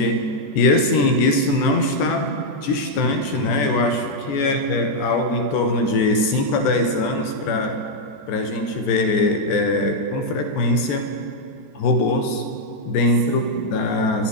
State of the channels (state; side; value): late; right; 14 ms